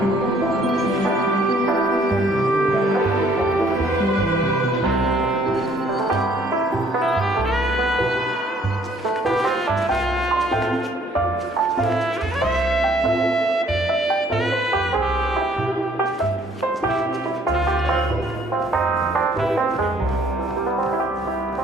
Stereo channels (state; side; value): normal; both; correlation 0.62